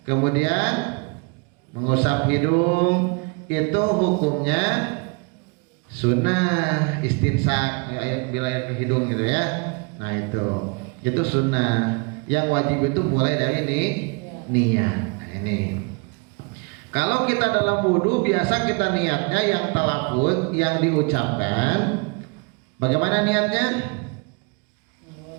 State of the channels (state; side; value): quieter; left; 31.6 dB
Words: kemudian mengusap hidung, itu hukumnya sunnah istinsak, bila air ke hidung, gitu ya. Nah, itu sunnah. Yang wajib itu mulai dari niat. Nah, ini kalau kita dalam wudhu biasa kita niatnya yang talafuz, yang diucapkan. Bagaimana niatnya?